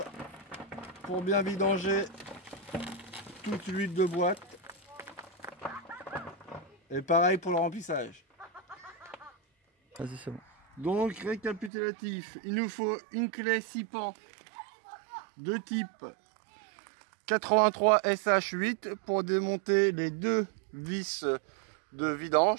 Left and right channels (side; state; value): left; drops out; at 11.7 s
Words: pour bien vidanger toute l'huile de boîte. Et pareil pour le remplissage. Vas-y, c'est bon. Donc récapitulatif, il nous faut une clé 6 pans de type 83 SH8 pour démonter les deux vis de